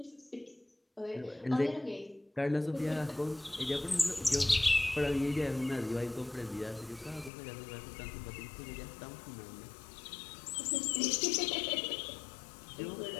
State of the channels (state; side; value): drops out; right; at 7.3 s